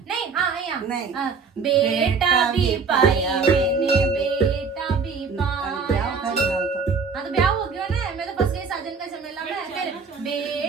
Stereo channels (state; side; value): quieter; left; 5.3 dB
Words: हाँ यहाँ नहीं। बेटा भी पाया मैंने, बेटा भी पाया। हाँ तो ब्याह हो गया ना, मैं तो फंस गई साजन का झमेला में। फिर